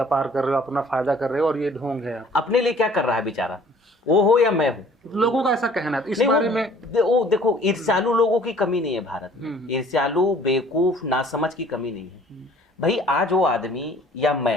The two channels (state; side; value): normal; both; correlation 0.54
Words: कर रहे हो, अपना फायदा कर रहे हो और ये ढोंग है। अपने लिए क्या कर रहा है बेचारा, वो हो या मैं हूँ? लोगों का ऐसा कहना है। इस नहीं, बारे में वो देखो, ईर्ष्यालु लोगों की कमी नहीं है भारत में। ईर्ष्यालु, बेवकूफ, नासमझ की कमी नहीं है। भाई आज वो आदमी या